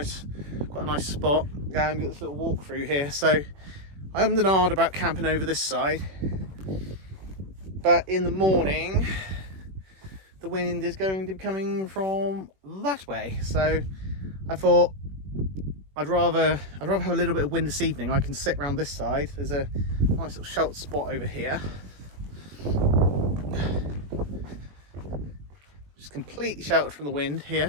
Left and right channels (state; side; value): late; left; 21 ms